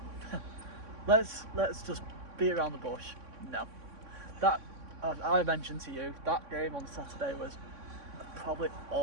Let's just beat around the bush. No. That I mentioned to you, that game on Saturday was probably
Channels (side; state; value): left; late; 3.6 ms